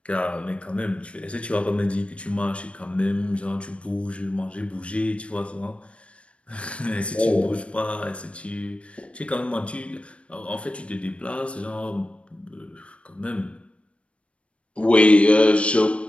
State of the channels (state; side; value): late; right; 0.061 ms